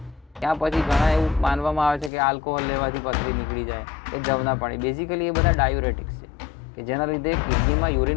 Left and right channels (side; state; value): right; drops out; at 2.1 s